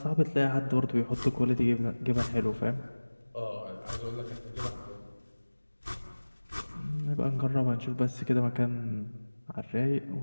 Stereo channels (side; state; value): both; inverted; correlation -1.00